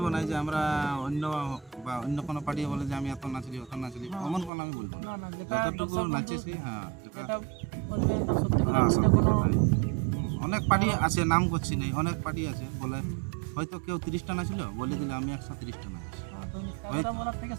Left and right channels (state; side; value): drops out; left; at 4.5 s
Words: না, যে আমরা অন্য কোনো পার্টি বলে যে আমি এত নাচলি অত নাচলি, এমন কোনো আমি বলবো না। না, যেটা যতটুকু নাচেছি, যেটা বলবেন তা সত্যি কথা, সত্যি কোনো কথাই। অনেক পার্টি আছে, নাম করছি নেই, অনেক পার্টি আছে বলে হয়তো কেউ 30টা নাচলো, বলে দিলে আমি 130টা নাচছি। কথা বলার থেকে